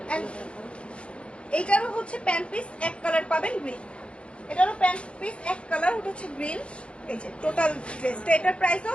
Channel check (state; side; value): late; right; 0.059 ms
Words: এইটারও হচ্ছে প্যান্ট পিস এক কালার পাবেন, গ্রিন। এটারও প্যান্ট পিস এক কালার, ওটা হচ্ছে গ্রিন। এই যে টোটাল ড্রেসটা, এটার প্রাইসও